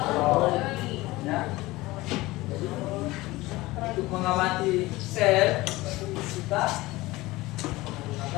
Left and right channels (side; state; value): right; quieter; 19.8 dB